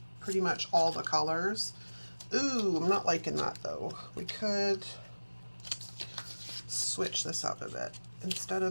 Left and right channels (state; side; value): inverted; both; correlation -1.00